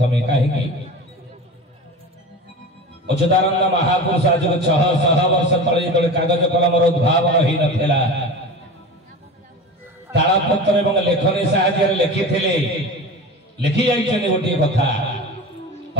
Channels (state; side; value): normal; both; correlation 0.31